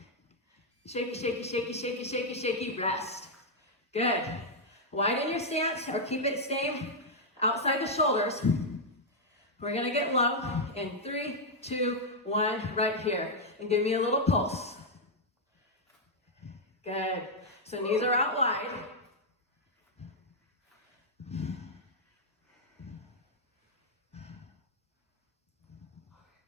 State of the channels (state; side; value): normal; both; correlation -0.03